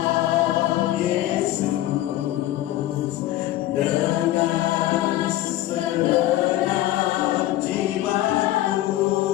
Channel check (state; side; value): quieter; right; 14.8 dB